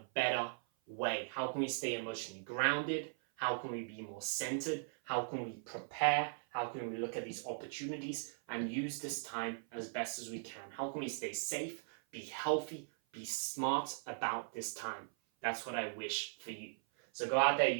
better way? How can we stay emotionally grounded? How can we be more centered? How can we prepare? How can we look at these opportunities and use this time as best as we can? How can we stay safe, be healthy, be smart about this time? That's what I wish for you. So go out there,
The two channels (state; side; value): silent; left; 52 dB below the other